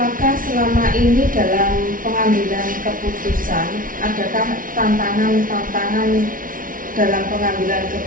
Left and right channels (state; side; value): late; left; 0.40 ms